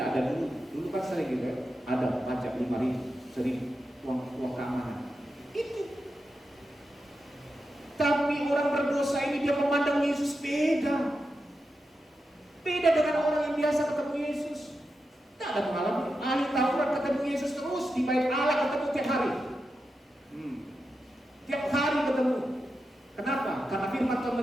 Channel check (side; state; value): both; normal; correlation 0.89